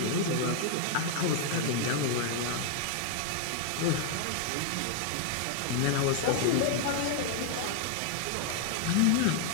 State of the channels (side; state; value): both; different; correlation 0.00